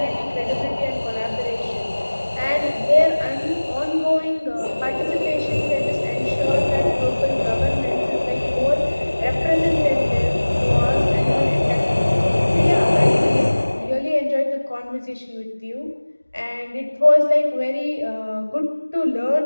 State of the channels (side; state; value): both; inverted; correlation -1.00